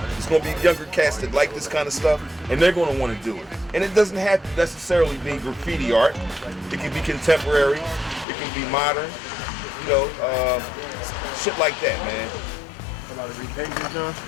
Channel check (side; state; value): right; drops out; at 8.2 s